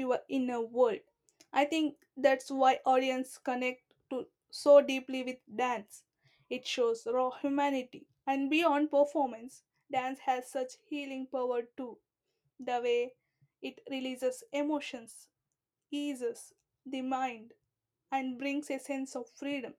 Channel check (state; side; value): identical; both; correlation 1.00